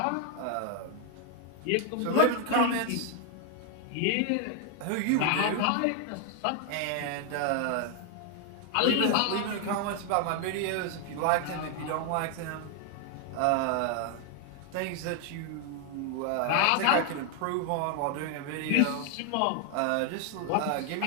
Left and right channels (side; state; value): both; different; correlation 0.00